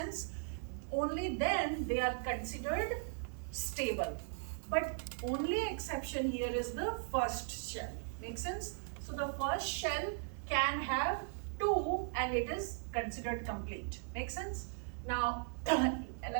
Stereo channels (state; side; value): silent; left; digital silence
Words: Only then they are considered stable. But only exception here is the first shell. Make sense? So the first shell can have 2 and it is considered complete. Make sense? Now,